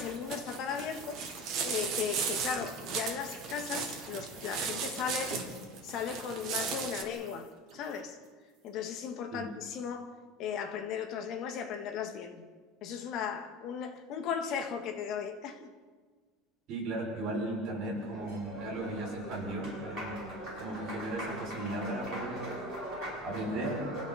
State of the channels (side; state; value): both; normal; correlation 0.33